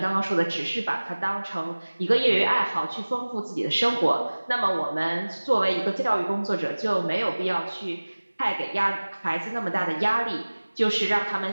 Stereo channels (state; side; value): inverted; both; correlation -1.00